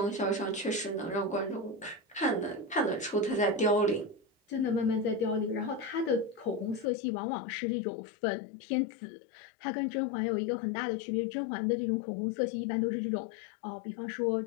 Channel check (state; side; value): drops out; right; at 6.9 s